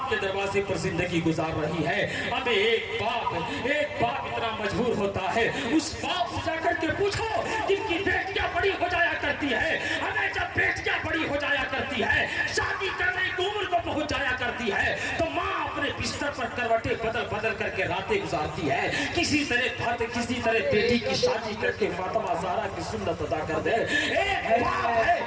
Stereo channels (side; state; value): both; identical; correlation 1.00